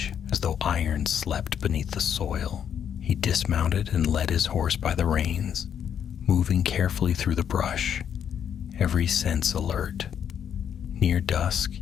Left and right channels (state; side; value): quieter; right; 8.6 dB